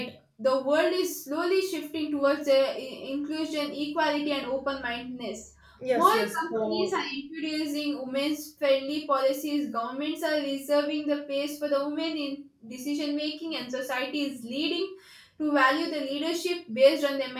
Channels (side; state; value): both; identical; correlation 1.00